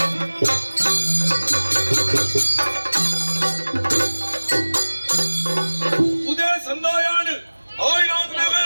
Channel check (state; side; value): inverted; both; correlation -1.00